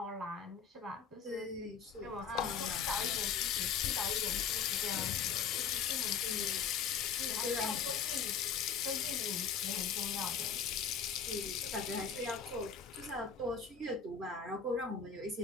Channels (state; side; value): quieter; right; 6.5 dB